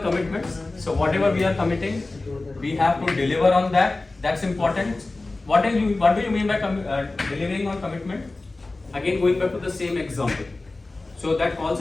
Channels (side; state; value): right; quieter; 3.2 dB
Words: commitments. So whatever we are committing, we have to deliver on that. That's important. What do you mean by delivering on commitment? Again, going back to the same example. So that call